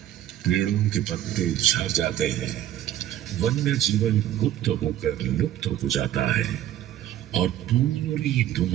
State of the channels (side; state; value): left; quieter; 12.3 dB